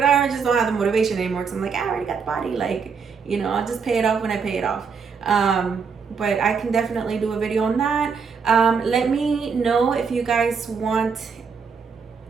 I just don't have the motivation anymore because I'm like, I already got the body, like, I'll just pay it off when I pay it off. But I can definitely do a video on that. Let me know if you guys want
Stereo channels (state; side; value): quieter; left; 5.7 dB